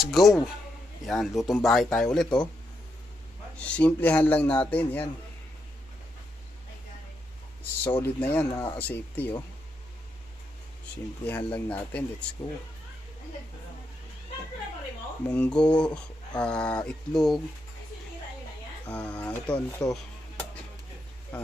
go. Yan, lutong bahay tayo ulit oh. Simplihan lang natin yan. Solid na yan mga ka-safety oh. Simplihan lang natin, let's go. Munggo, itlog, ito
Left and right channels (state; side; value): normal; both; correlation 0.82